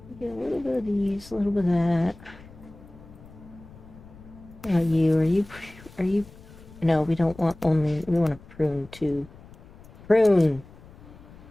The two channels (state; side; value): noise; left; rumble, 21 dB below the sound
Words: Get a little bit of these, a little bit of that. Are you, no, we don't want only, we want to prune too. Prune!